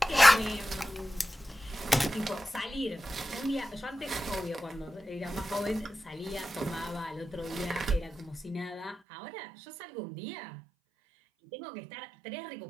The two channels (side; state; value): left; drops out; at 9.0 s